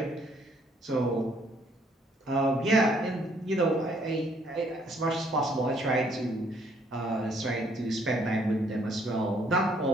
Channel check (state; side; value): normal; both; correlation 0.65